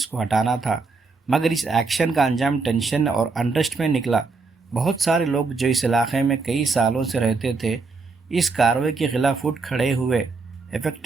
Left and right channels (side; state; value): left; quieter; 4.2 dB